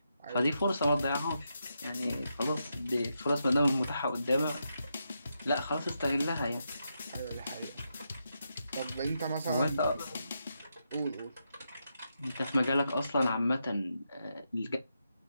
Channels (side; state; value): both; inverted; correlation -0.84